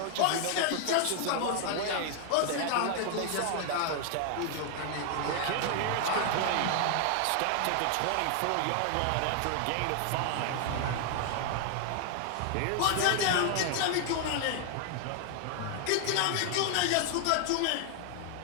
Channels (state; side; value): different; both; correlation 0.00